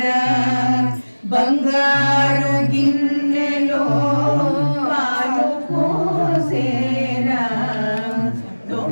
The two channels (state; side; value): inverted; both; correlation -1.00